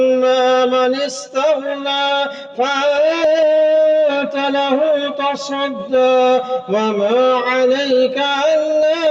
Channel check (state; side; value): identical; both; correlation 1.00